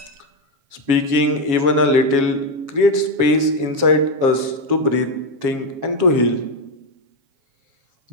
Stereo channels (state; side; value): late; left; 7.2 ms